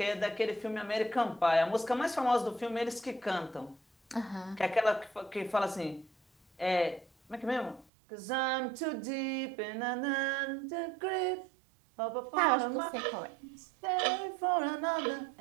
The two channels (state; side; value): drops out; left; at 7.9 s